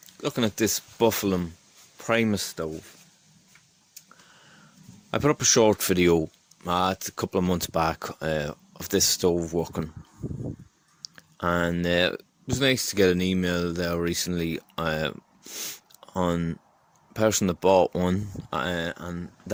looking at this Buffalo Primus stove. I put up a short video it's a couple of months back of this stove working, and it was nice to get an email there recently on a person that bought one, and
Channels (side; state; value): both; identical; correlation 1.00